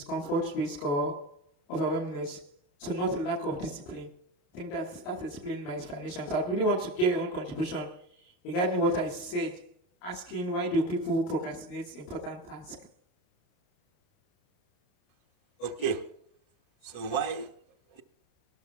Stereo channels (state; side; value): late; right; 28 ms